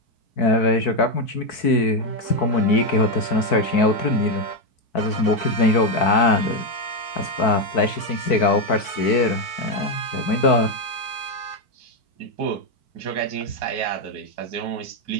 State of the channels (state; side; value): late; right; 4.6 ms